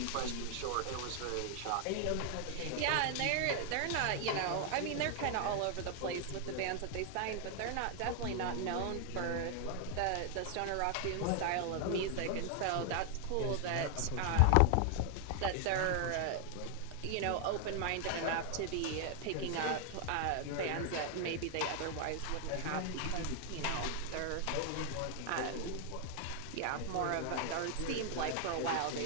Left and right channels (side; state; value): both; different; correlation 0.00